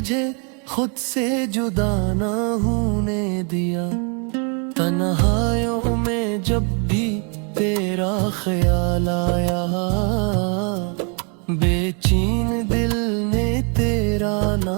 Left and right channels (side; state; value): left; quieter; 37.9 dB